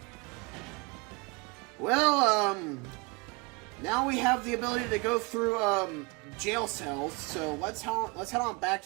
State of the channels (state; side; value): quieter; left; 26.2 dB